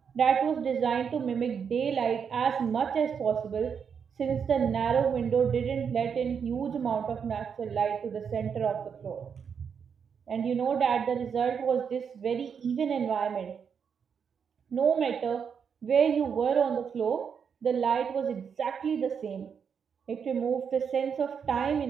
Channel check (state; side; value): quieter; left; 6.9 dB